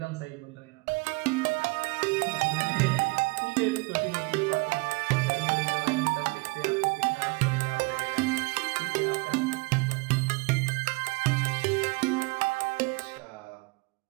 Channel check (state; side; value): quieter; left; 26.7 dB